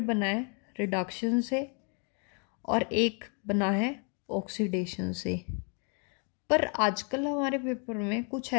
बना है रिडक्शन से और एक बना है ऑक्सीडेशन से। पर आजकल हमारे पेपर में कुछ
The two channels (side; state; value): right; quieter; 37.8 dB